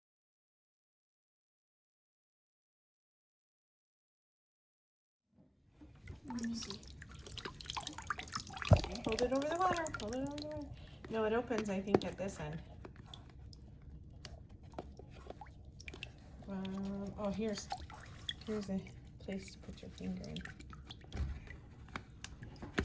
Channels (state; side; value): identical; both; correlation 1.00